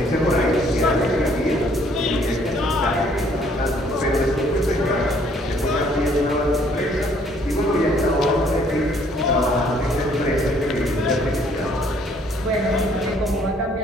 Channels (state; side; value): normal; both; correlation 0.63